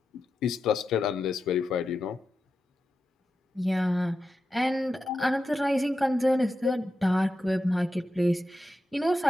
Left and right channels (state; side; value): normal; both; correlation 0.89